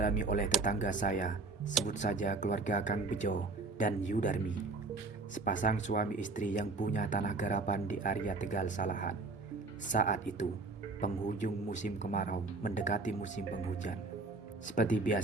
oleh tetangga saya, sebut saja keluarga Kang Bejo dan Yudarmi. Sepasang suami istri yang punya tanah garapan di area Tegal Salahan. Saat itu, penghujung musim kemarau mendekati musim penghujan. Seperti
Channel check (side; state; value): left; quieter; 3.6 dB